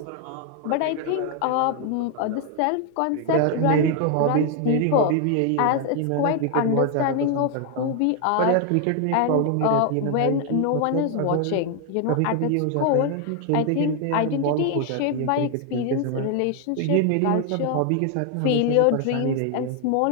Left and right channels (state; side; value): different; both; correlation 0.01